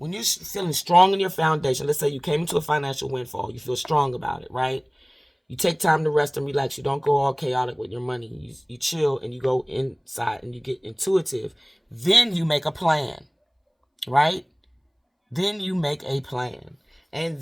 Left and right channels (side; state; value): both; identical; correlation 1.00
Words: you're feeling strong in your foundation, let's say you came into a financial windfall, you feel strong about it, right? You take time to rest and relax. You don't go all chaotic with your money. You chill and you go inside and you get intuitive. Then you make a plan, right? Then you make a plan. And